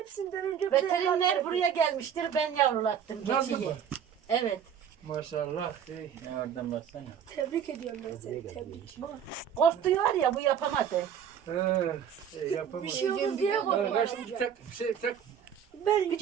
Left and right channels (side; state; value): left; quieter; 8.4 dB